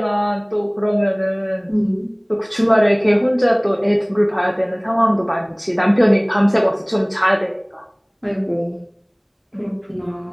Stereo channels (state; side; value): identical; both; correlation 1.00